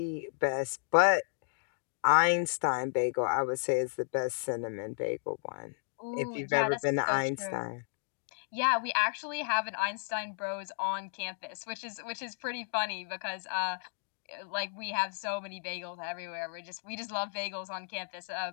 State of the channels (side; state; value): right; silent; digital silence